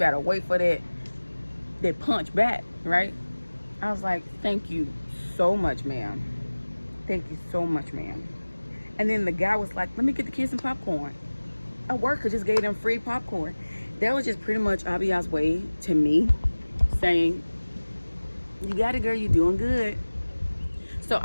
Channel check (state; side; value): inverted; both; correlation -1.00